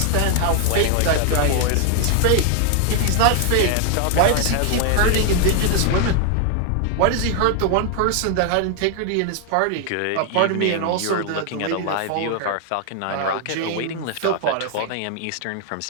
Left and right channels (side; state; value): both; different; correlation 0.00